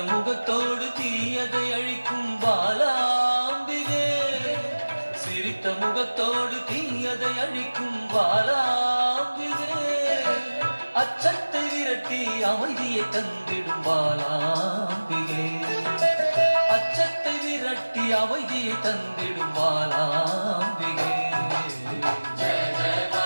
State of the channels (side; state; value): both; inverted; correlation -1.00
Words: முகத்தோடு தீயதை அழிக்கும் பாலாம்பிகே சிரித்த முகத்தோடு தீயதை அழிக்கும் பாலாம்பிகே அச்சத்தை விரட்டி அமைதியை தந்திடும் பாலாம்பிகே அச்சத்தை விரட்டி அமைதியை தந்திடும் பாலாம்பிகே